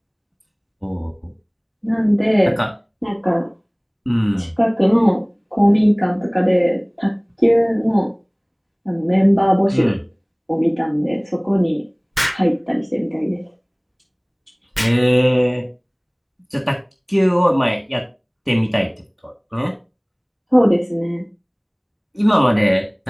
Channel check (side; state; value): both; identical; correlation 1.00